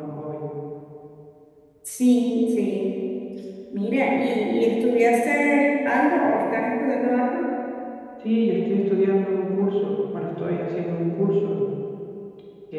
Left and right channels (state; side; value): identical; both; correlation 1.00